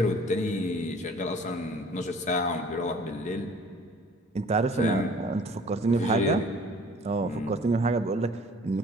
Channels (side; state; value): both; normal; correlation 0.51